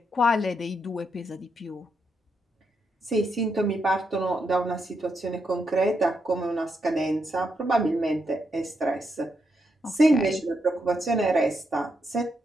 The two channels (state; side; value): normal; both; correlation 0.81